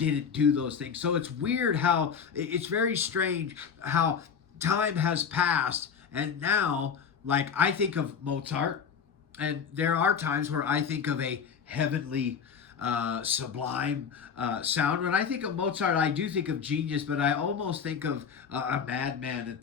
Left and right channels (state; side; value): quieter; right; 6.8 dB